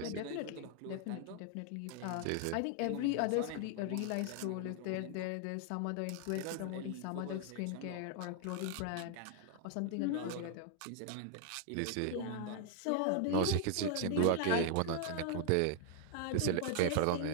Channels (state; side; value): different; both; correlation 0.00